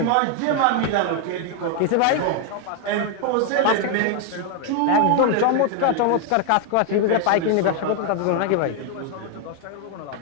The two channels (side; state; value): both; different; correlation 0.01